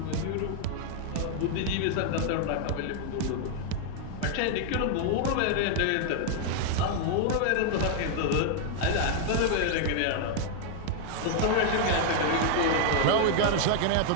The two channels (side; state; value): both; different; correlation 0.00